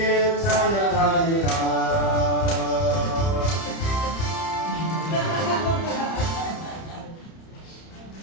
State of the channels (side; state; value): right; late; 30 ms